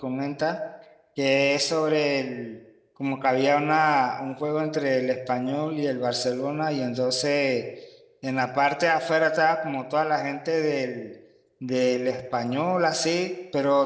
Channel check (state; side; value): identical; both; correlation 1.00